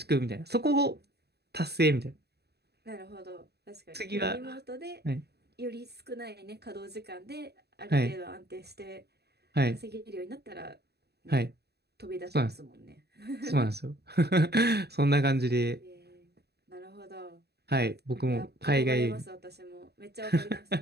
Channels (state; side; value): late; left; 0.48 ms